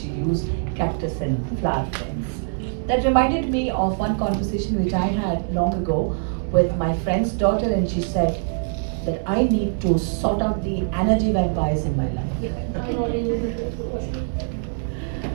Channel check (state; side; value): silent; left; digital silence